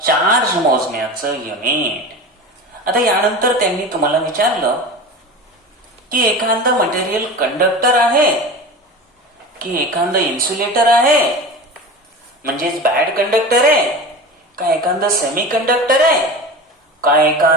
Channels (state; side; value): normal; both; correlation 0.31